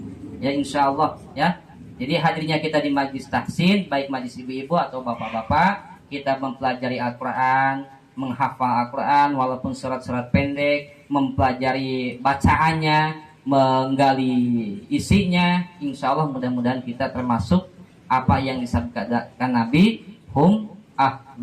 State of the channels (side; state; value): both; identical; correlation 1.00